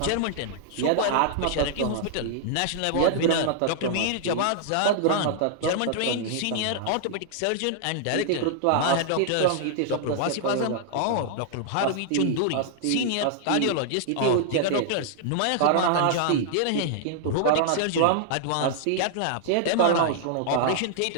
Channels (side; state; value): both; different; correlation -0.01